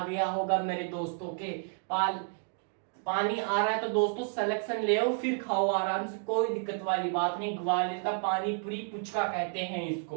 गया होगा मेरे दोस्तों के। पानी आ रहा है तो दोस्तों सिलेक्शन ले आओ फिर खाओ आराम से, कोई दिक्कत वाली बात नहीं। ग्वालियर का पानी पूरी पुचका कहते हैं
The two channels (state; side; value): silent; left; 57 dB below the other